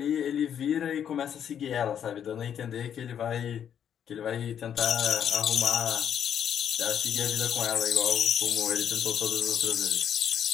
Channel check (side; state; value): right; quieter; 8.9 dB